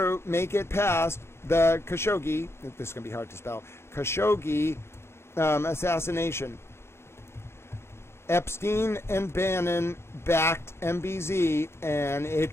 past the Khashoggi, this is going to be hard to spell, Khashoggi assassination. Epstein and Bannon backed MBZ, and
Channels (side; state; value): right; late; 0.12 ms